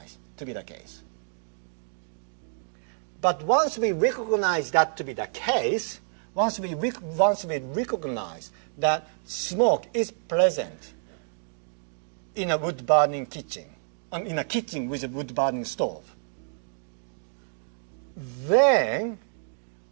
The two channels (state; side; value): silent; left; digital silence